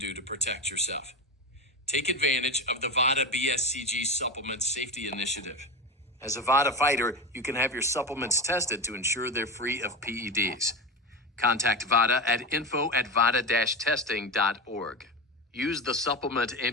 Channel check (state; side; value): normal; both; correlation 0.21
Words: to protect yourself. Take advantage of the Vada BSCG Supplement Safety Initiative. As a Vada fighter, you can have your supplements tested to ensure they're free of PEDs. Contact Vada at info@vada-testing.org. Use the supplement